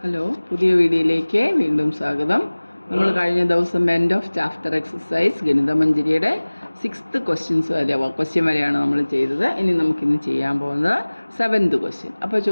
Hello, പുതിയ വീഡിയോയിലേക്ക് വീണ്ടും സ്വാഗതം. നമ്മൾ കഴിഞ്ഞ ദിവസം എൻഡ് ഓഫ് ചാപ്റ്റർ എക്സസൈസ് ഗണിതമഞ്ജരിയുടെ 6th ക്വസ്റ്റ്യൻ വരെയാണ് നമ്മൾ ചെയ്തത്. ഇനി നമുക്കിന്ന് ചെയ്യാൻ പോകുന്നത് 7th ക്വസ്റ്റ്യൻ. അപ്പോൾ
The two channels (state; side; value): inverted; both; correlation -1.00